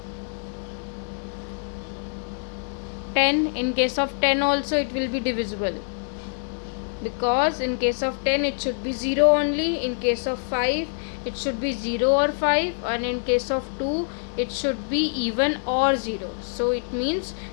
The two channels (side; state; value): right; silent; 62 dB below the other